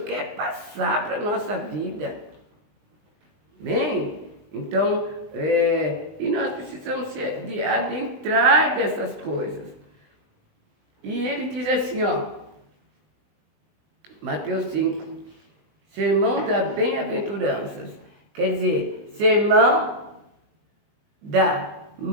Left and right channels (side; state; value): left; late; 20 ms